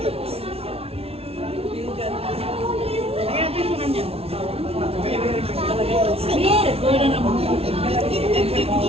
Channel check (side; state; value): left; late; 0.29 ms